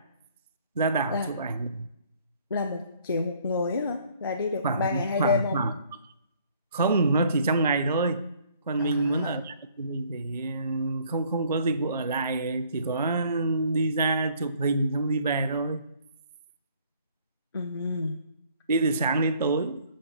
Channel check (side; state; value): both; inverted; correlation -0.60